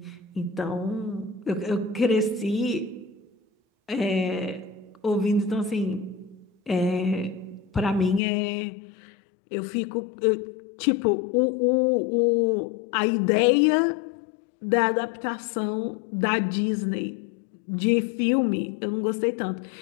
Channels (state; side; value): drops out; right; at 8.2 s